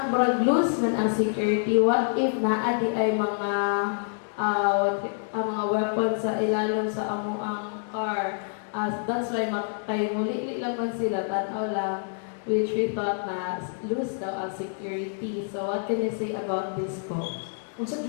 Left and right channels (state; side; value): silent; right; digital silence